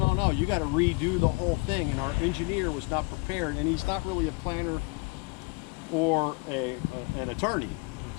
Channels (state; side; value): quieter; right; 27.7 dB